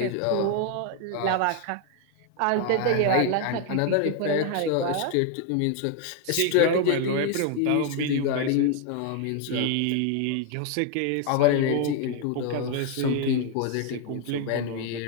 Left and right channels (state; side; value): different; both; correlation 0.01